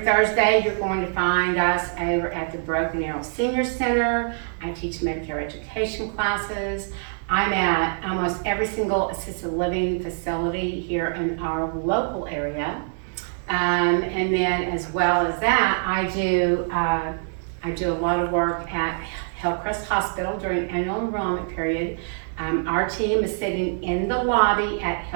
you're going to find us over at the Broken Arrow Senior Center. I teach Medicare education classes. I'm at almost every single assisted living facility here in our local area. And then as well as that, I do a lot of work at Hillcrest Hospital during annual enrollment period. Our team is sitting in the lobby at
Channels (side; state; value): left; silent; digital silence